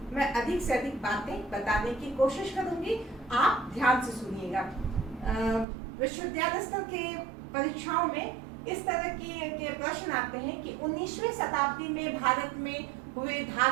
मैं अधिक से अधिक बातें बताने की कोशिश करूंगी, आप ध्यान से सुनिएगा। विश्वविद्यालय स्तर के परीक्षाओं में इस तरह के प्रश्न आते हैं कि 19वीं शताब्दी में भारत में हुए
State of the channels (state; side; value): drops out; left; at 5.7 s